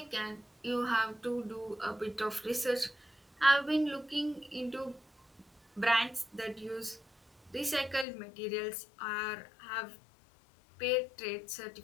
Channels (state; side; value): drops out; right; at 8.1 s